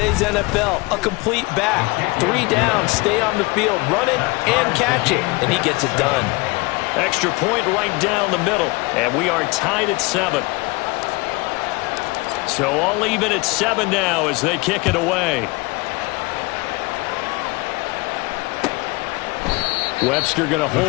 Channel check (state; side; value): quieter; right; 24.9 dB